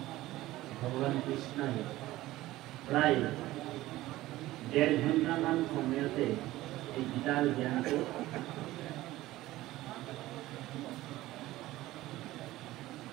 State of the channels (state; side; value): quieter; left; 16.7 dB